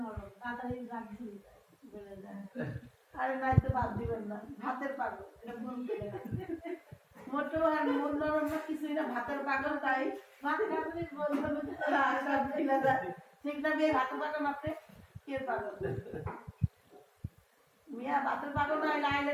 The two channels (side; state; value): both; identical; correlation 1.00